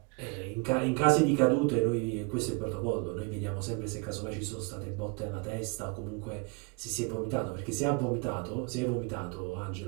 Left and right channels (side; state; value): left; quieter; 32.8 dB